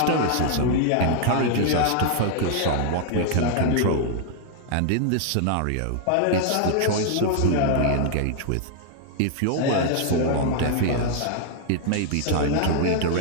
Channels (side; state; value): both; different; correlation 0.00